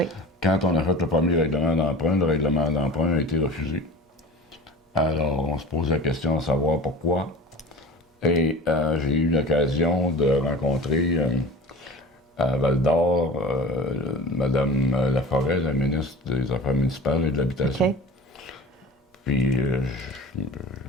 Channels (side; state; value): both; normal; correlation 0.37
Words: Quand on a fait le premier règlement d'emprunt, le règlement d'emprunt a été refusé. Alors, on se pose la question de savoir pourquoi. Et j'ai eu l'occasion de rencontrer à Val-d'Or Mme Laforêt, la ministre des Affaires municipales et de l'Habitation. OK. Puis